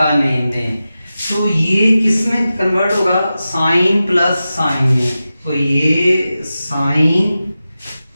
नेम दें, तो ये किस में कन्वर्ट होगा, साइन प्लस साइन में। तो ये साइन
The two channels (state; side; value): inverted; both; correlation -0.93